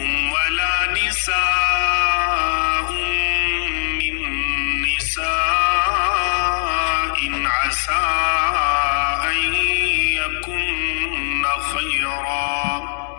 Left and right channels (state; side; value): silent; right; digital silence